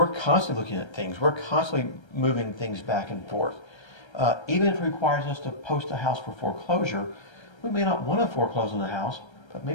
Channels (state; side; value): late; right; 1.3 ms